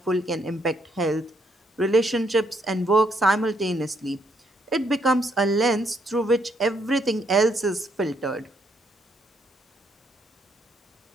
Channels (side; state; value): both; normal; correlation 0.72